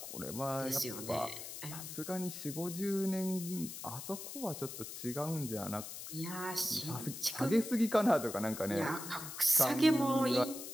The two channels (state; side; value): noise; left; hiss, 9 dB below the sound